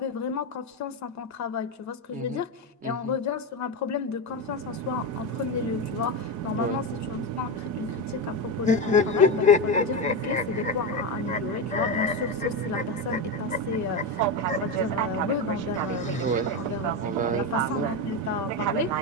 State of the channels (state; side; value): normal; both; correlation 0.14